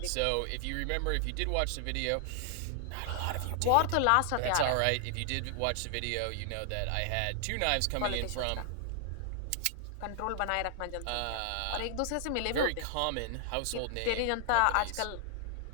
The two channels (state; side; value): different; both; correlation 0.00